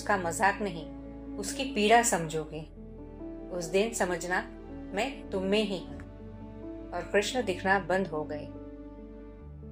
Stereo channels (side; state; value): both; identical; correlation 1.00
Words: मजाक नहीं उसकी पीड़ा समझोगे। उस दिन समझना मैं तुम में ही हूं। और कृष्ण दिखना बंद हो गए,